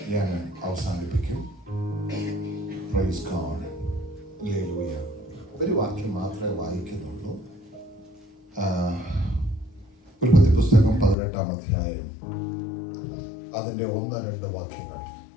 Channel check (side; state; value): right; drops out; at 11.2 s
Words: ഞാൻ അവസാനിപ്പിക്കും. Price God. ഹല്ലേലൂയ. ഒരു വാക്യം മാത്രമേ വായിക്കുന്നുള്ളൂ. ഉൽപ്പത്തി പുസ്തകം 18-ാം അധ്യായം അതിന്റെ 1-2 വാക്യങ്ങൾ.